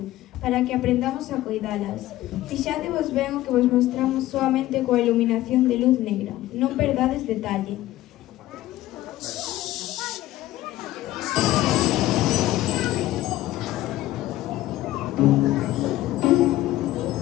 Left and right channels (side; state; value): right; quieter; 15.5 dB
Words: para que aprendamos a coidalas. Fixadevos ben o que vos mostramos soamente coa iluminación de luz negra. Non perdades detalle.